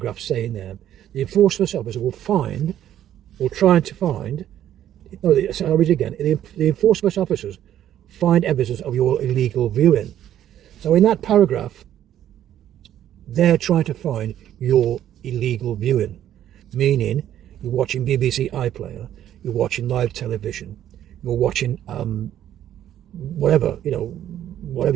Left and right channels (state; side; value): quieter; left; 11.3 dB